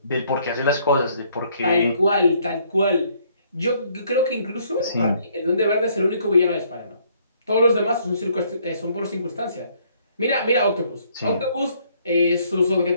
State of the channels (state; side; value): inverted; both; correlation -0.66